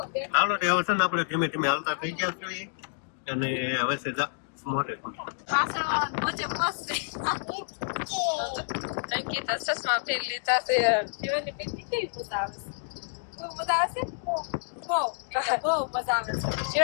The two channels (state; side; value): silent; right; digital silence